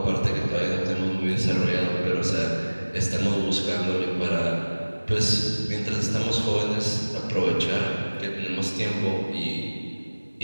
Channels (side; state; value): both; inverted; correlation -1.00